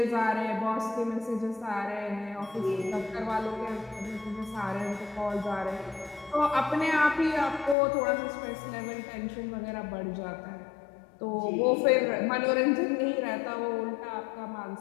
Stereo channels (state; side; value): drops out; right; at 7.8 s